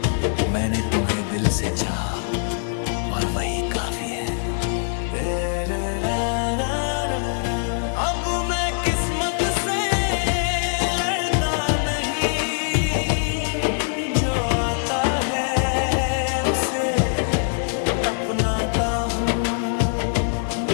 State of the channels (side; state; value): right; silent; digital silence